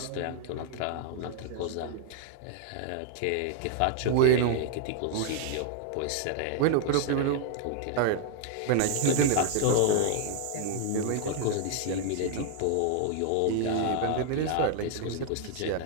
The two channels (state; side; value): different; both; correlation 0.00